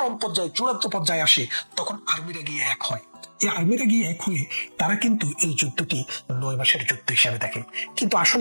পর্যায়ে, চূড়ান্ত পর্যায়ে আসে, তখন আর্মিরা গিয়ে এক হয়। এই আর্মিরা গিয়ে এক হয়ে তারা কিন্তু এই যুদ্ধটি 9 মাসের যুদ্ধ হিসাবে দেখে। কিন্তু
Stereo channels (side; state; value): both; inverted; correlation -1.00